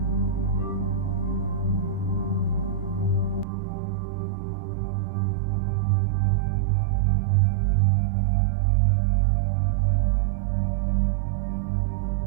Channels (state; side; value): drops out; left; at 3.5 s